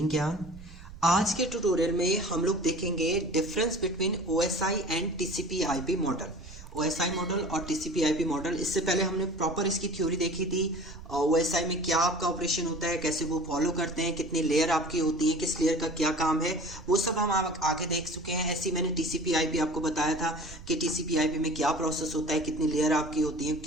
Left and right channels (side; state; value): right; noise; rumble, 16 dB below the sound